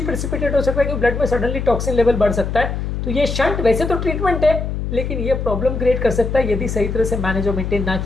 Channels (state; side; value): noise; left; hum, 3 dB below the sound